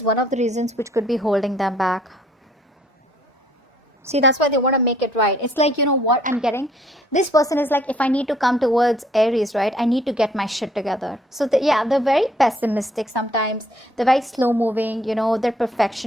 one of the reasons which could be holding them back. See, that's why they want to make it right. It's like, you know what I'm getting? This person is like, if I need to come towards Aries, right, I need to get my shit together. So, yeah, they're very pessimistic sometimes. They're very slow moving, you know, they're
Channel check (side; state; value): both; normal; correlation 0.62